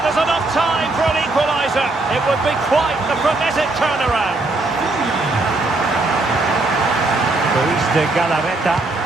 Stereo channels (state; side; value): quieter; left; 3.0 dB